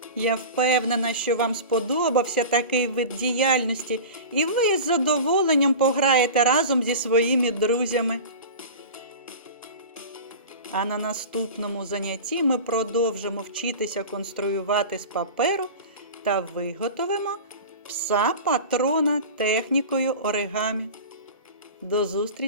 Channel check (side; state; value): both; inverted; correlation -0.32